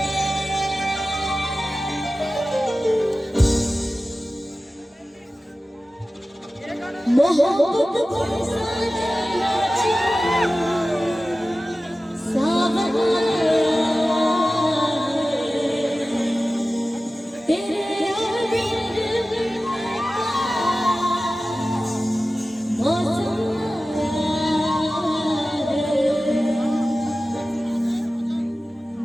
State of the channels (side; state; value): both; normal; correlation 0.95